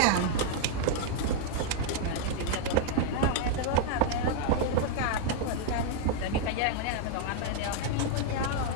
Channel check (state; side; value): different; both; correlation 0.00